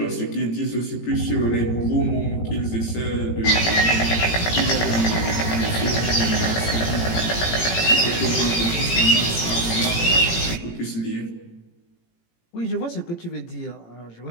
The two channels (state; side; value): late; right; 18 ms